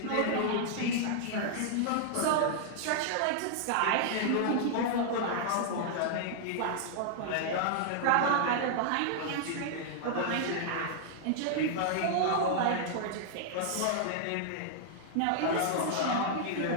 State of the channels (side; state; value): both; different; correlation -0.01